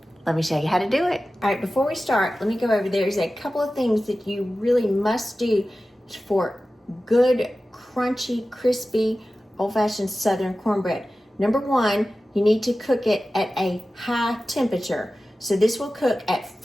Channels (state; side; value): normal; both; correlation 0.95